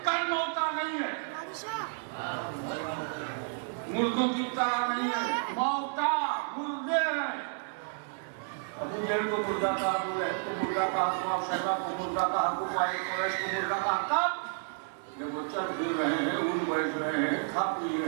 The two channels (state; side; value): silent; left; digital silence